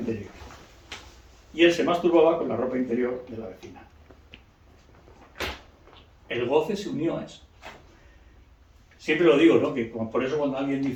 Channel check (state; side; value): identical; both; correlation 1.00